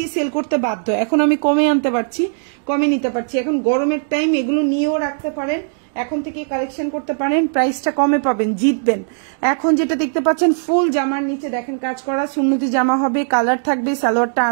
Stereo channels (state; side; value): silent; left; digital silence